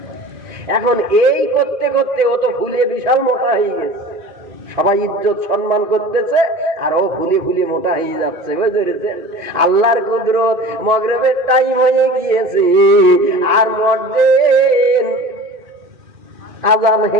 এখন এই করতে করতে ও তো ফুলে বিশাল মোটা হয়ে গেছে, সবাই ইজ্জত সম্মান করতেছে আর ও ফুলে ফুলে মোটা হয়ে যাচ্ছে, বুঝেছেন? আল্লাহর কুদরত, মাগরিবের টাইম হয়ে গিয়েছে আর মুয়াজ্জিন আযান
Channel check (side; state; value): left; late; 1.7 ms